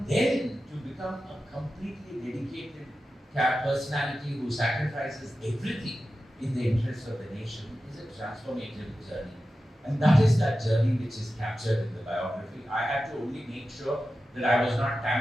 then to become a completely dedicated personality who sacrifices everything in the interest of the nation is a transformative journey. And that is that journey which is captured in the biography. I had to only make sure that I was not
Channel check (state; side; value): normal; both; correlation 0.93